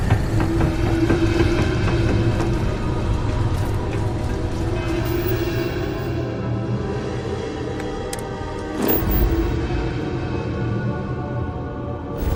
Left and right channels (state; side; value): identical; both; correlation 1.00